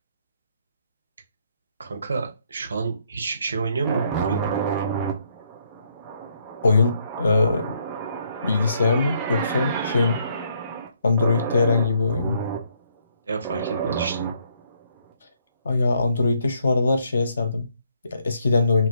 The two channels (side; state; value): both; inverted; correlation -0.71